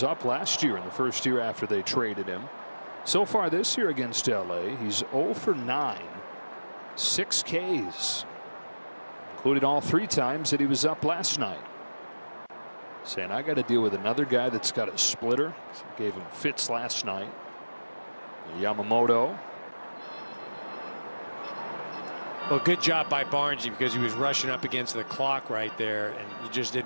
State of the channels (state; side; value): inverted; both; correlation -1.00